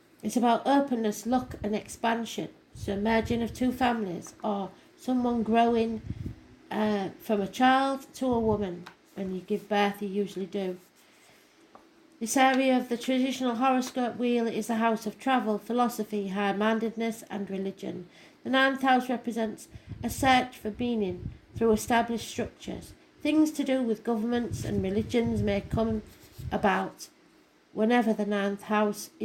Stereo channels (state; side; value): identical; both; correlation 1.00